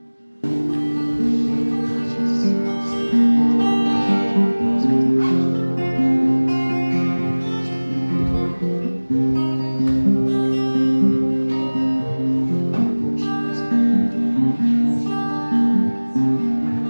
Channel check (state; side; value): inverted; both; correlation -1.00